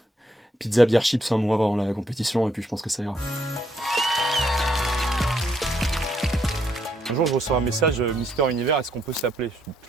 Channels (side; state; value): both; normal; correlation 0.74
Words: pizza, bière, chips un mois avant la compétition et puis je pense que ça ira. Un jour, je reçois un message Mister Univers, est-ce qu'on peut s'appeler?